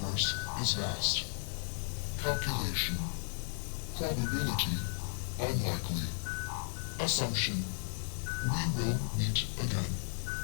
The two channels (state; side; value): silent; right; digital silence